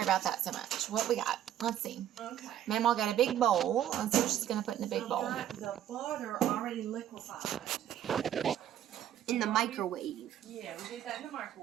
about that so much. What we got? Let's see. Okay. Mamaw got a big bowl. Let's see what she's gonna put in the big bowl. I've got the butter already liquefied. In the microwave. Yeah, we did that in the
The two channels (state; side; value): quieter; left; 11.1 dB